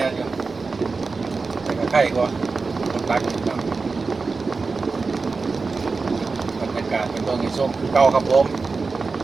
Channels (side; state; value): left; quieter; 4.2 dB